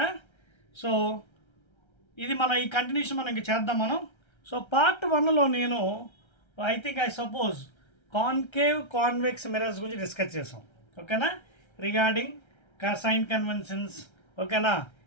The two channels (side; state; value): right; late; 1.3 ms